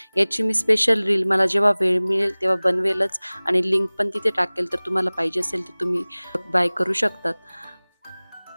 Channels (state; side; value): inverted; both; correlation -1.00